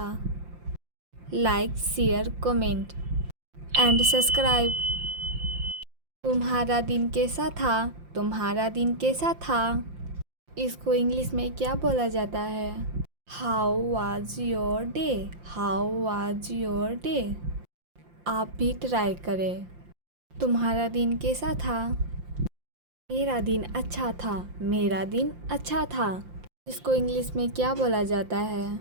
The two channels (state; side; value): late; left; 5.7 ms